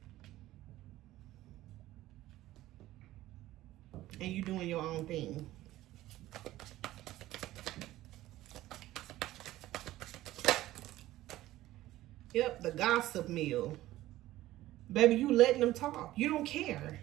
And you doing your own thing. Yep, the gossip mill. Baby, you letting them talk. You don't care.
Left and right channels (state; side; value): quieter; left; 15.6 dB